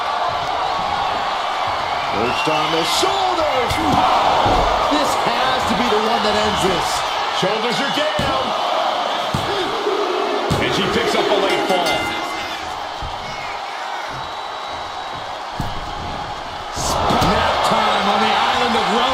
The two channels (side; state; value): both; identical; correlation 1.00